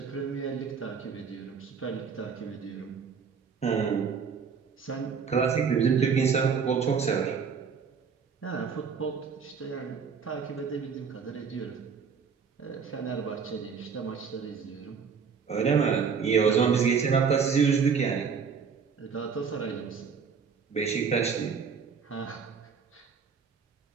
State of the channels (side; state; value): left; quieter; 6.1 dB